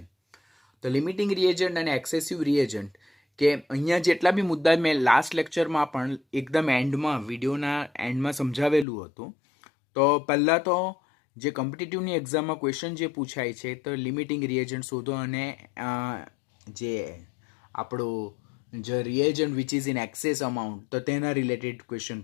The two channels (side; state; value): right; drops out; at 8.8 s